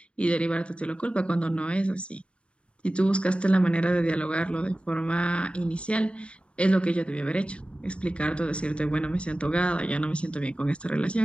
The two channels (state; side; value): late; right; 0.058 ms